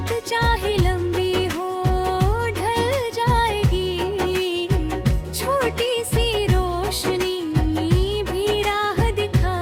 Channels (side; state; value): both; identical; correlation 1.00